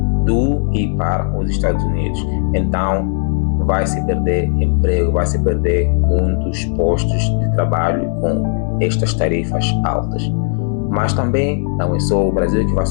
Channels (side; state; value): right; silent; 58 dB below the other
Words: do e para os Estados Unidos. Então, vai se perder emprego, vai se perder muitos postos de trabalho com estas tarifas altas. Mas também não é só o Brasil que vai